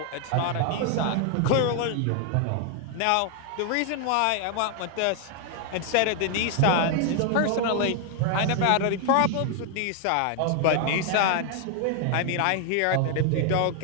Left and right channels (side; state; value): both; different; correlation 0.00